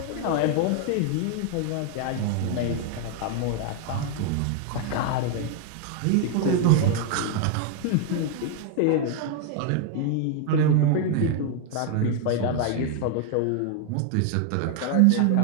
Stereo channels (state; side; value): different; both; correlation 0.00